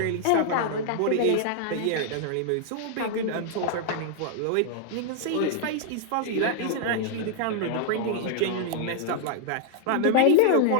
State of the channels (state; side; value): different; both; correlation -0.01